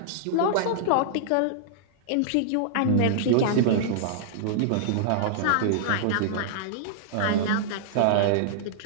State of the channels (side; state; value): both; different; correlation -0.02